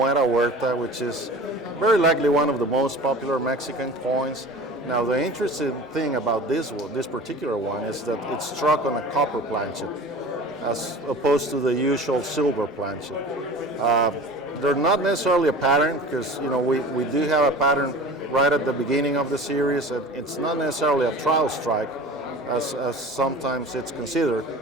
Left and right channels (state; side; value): normal; both; correlation 0.39